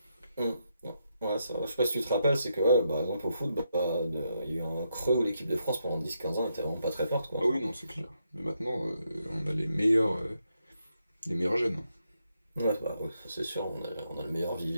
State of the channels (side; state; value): both; inverted; correlation -0.81